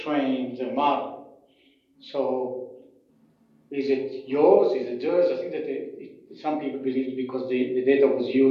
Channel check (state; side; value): identical; both; correlation 1.00